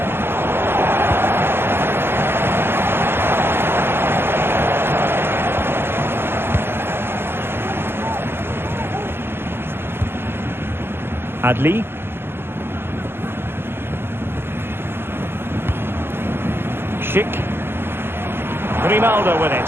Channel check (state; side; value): late; left; 0.11 ms